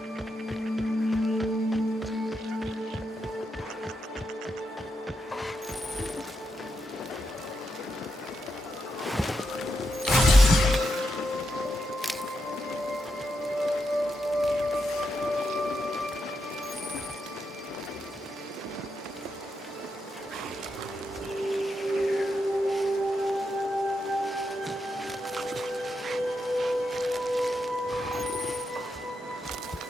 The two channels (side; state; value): both; normal; correlation 0.84